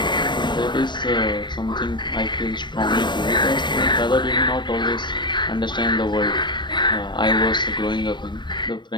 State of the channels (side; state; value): right; late; 0.22 ms